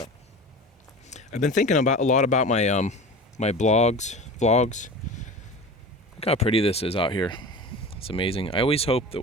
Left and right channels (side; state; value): both; normal; correlation 0.33